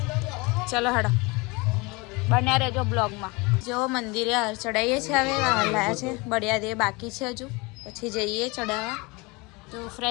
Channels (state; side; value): quieter; right; 26.2 dB